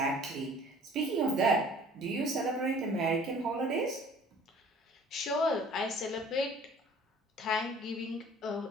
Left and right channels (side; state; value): both; normal; correlation 0.51